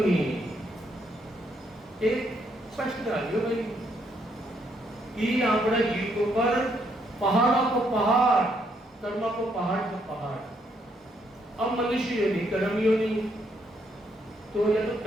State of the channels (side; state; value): both; normal; correlation 0.73